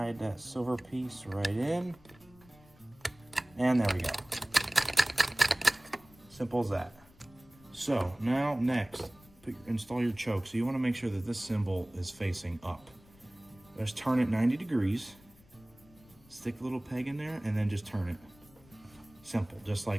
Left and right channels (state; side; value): noise; left; rumble, 26 dB below the sound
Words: that silver piece right in. And there we go. Simple as that. So now next, install your choke. So you want to make sure that this cymbal is facing up. Just turn it 90 degrees, stick a little peg in there, and then just turn it. Simple, just